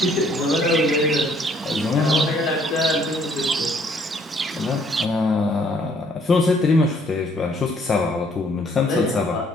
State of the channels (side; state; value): both; normal; correlation 0.63